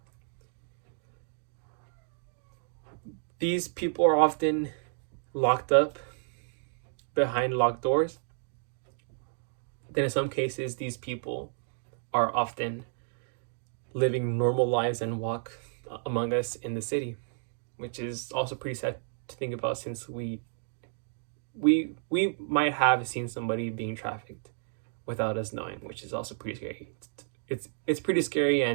These people are often locked up behind locked doors. Then in some cases, these people are often living normal lives and walk among us in the city, which is also pretty sad to think about, since we might have seen somebody being trafficked without us knowing, which is also pretty scary. It's pretty scary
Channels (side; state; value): left; silent; digital silence